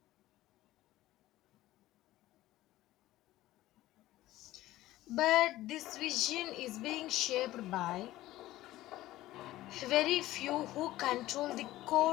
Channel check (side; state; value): right; quieter; 15.9 dB